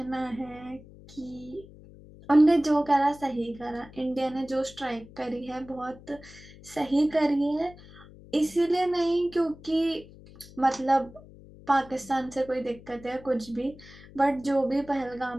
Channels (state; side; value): noise; left; hum, 20 dB below the sound